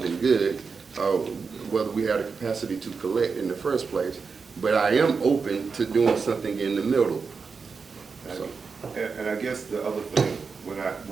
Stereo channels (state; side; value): quieter; left; 5.1 dB